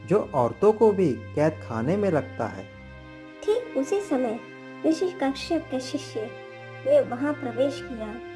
जो औरतों को भी कैद खाने में रखता है। ठीक उसी समय ऋषि कश्यप के शिष्य ने वहां प्रवेश किया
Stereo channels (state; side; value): identical; both; correlation 1.00